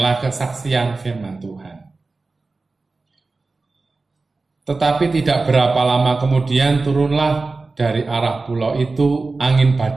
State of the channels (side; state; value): left; quieter; 3.7 dB